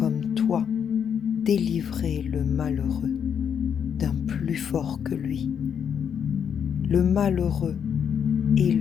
toi délivrer le malheureux d'un plus fort que lui, le malheureux et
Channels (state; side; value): quieter; right; 7.8 dB